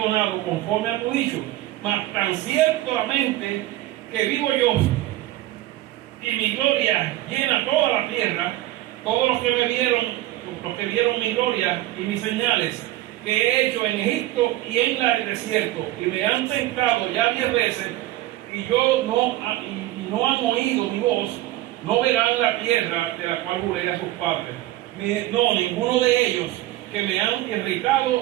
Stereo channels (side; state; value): left; quieter; 15.8 dB